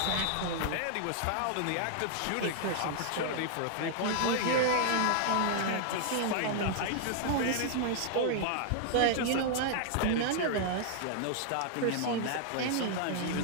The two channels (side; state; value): both; different; correlation 0.00